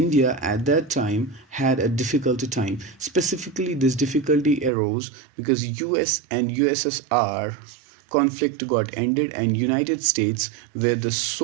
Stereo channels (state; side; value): drops out; left; at 4.7 s